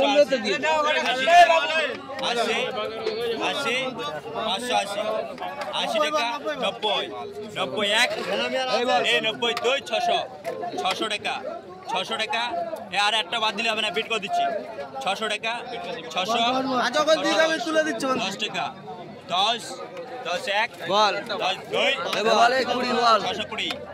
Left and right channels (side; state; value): both; identical; correlation 1.00